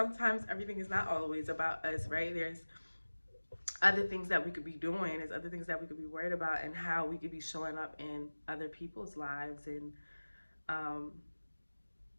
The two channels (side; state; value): both; inverted; correlation -1.00